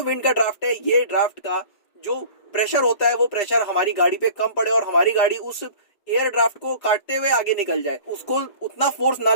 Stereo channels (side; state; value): right; late; 5.0 ms